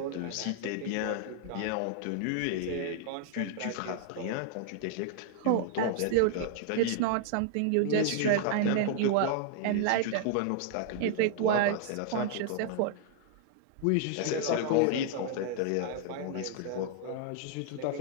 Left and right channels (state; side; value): different; both; correlation -0.01